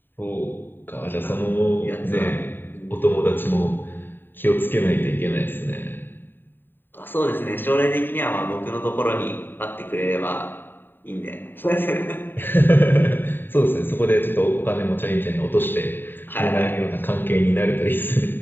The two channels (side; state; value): right; late; 0.095 ms